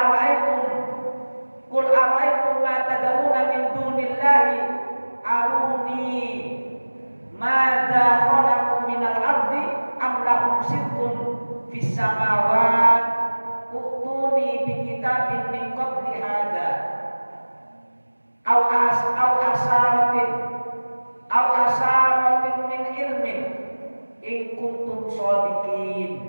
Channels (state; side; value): inverted; both; correlation -1.00